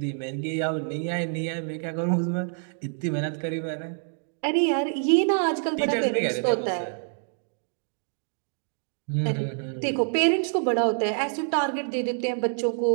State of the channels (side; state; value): left; silent; 59 dB below the other